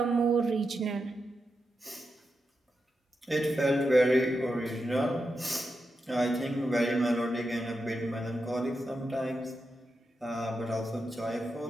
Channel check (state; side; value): normal; both; correlation 0.87